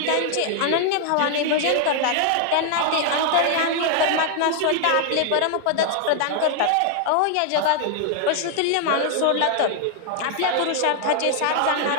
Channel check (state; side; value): different; both; correlation 0.00